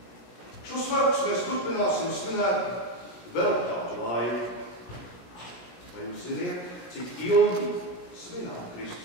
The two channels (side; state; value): right; late; 17 ms